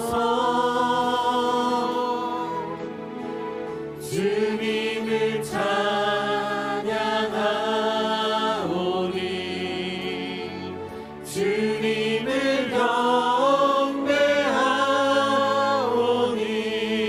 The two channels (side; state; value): both; identical; correlation 1.00